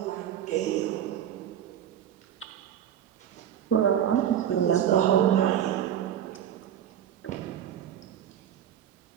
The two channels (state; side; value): quieter; left; 10.1 dB